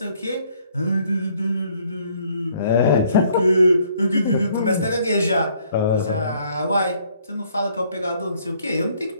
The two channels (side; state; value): both; inverted; correlation -0.64